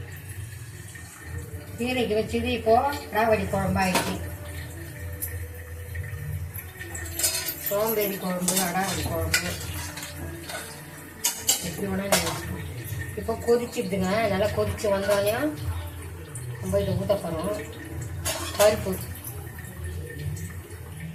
கீரைக்கு வச்சது இப்போ ராவடி குழம்பு ஆயிடுச்சு. சோம்பேறி குழம்பு, அடாவடி குழம்பு, எப்படி வேணா இப்போ கொதிச்சுடுதுங்க. நல்லா கொதிச்சு வந்தோடனே நம்ம இதை ஊற்ற போகிறோம். பருப்பு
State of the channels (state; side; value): identical; both; correlation 1.00